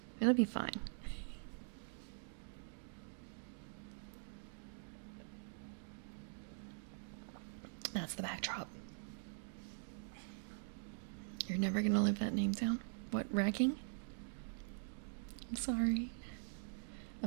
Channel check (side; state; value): left; silent; digital silence